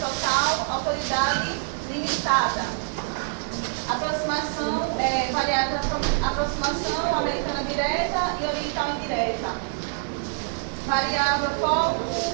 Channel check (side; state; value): left; silent; digital silence